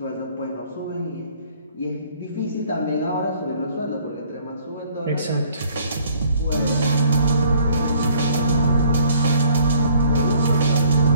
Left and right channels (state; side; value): inverted; both; correlation -0.59